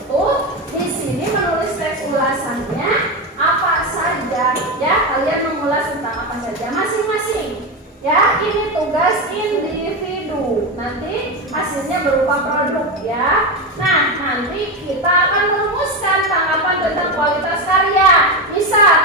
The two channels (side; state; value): both; normal; correlation 0.15